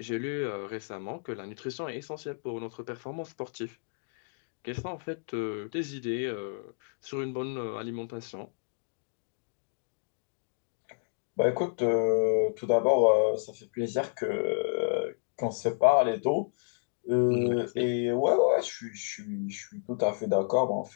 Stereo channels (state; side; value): silent; right; digital silence